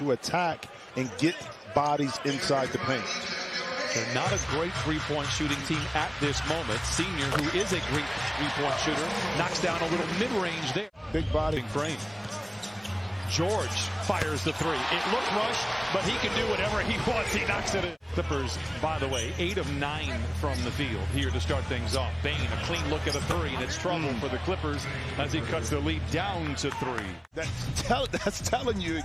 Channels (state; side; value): identical; both; correlation 1.00